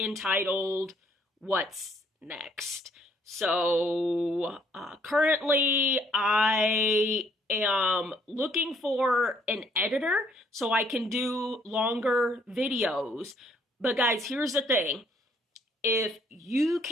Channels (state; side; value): normal; both; correlation 0.65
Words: What's Next. So currently I am looking for an editor so I can do longer videos. But guys, here's the thing. If you